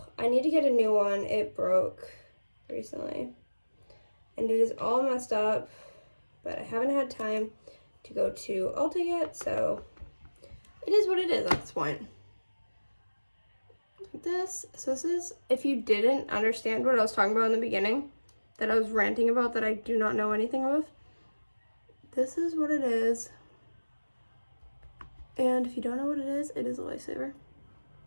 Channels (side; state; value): both; inverted; correlation -1.00